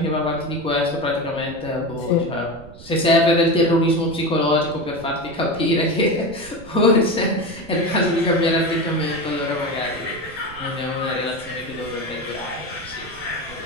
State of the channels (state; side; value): noise; right; rumble, 18 dB below the sound